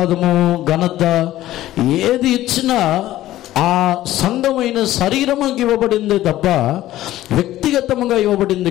ఘనత ఏది ఇచ్చినా ఆ సంఘమైన శరీరముకి ఇవ్వబడిందే తప్ప వ్యక్తిగతముగా ఇవ్వబడింది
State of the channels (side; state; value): right; quieter; 14.6 dB